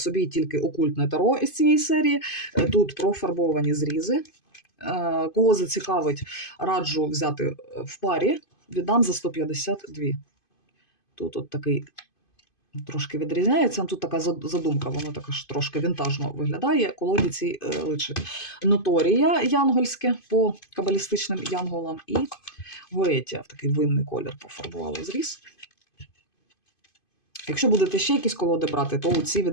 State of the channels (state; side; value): late; right; 2.5 ms